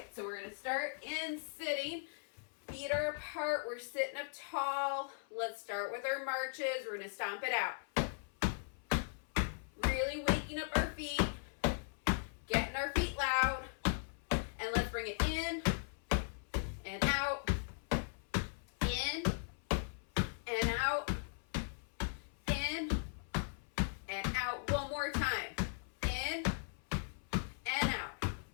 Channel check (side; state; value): right; silent; 52 dB below the other